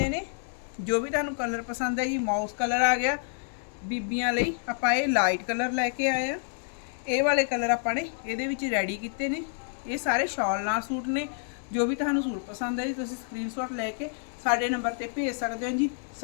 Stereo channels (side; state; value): right; silent; 59 dB below the other